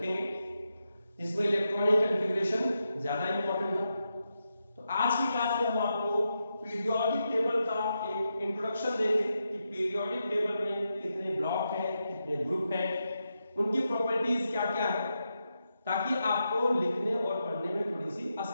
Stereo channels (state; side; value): inverted; both; correlation -0.87